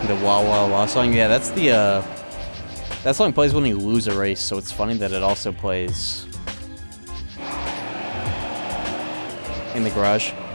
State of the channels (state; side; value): inverted; both; correlation -1.00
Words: The Wah Wah Wah song, yeah, that's the, that song plays when you lose a race, so it's funny that it also plays in the garage.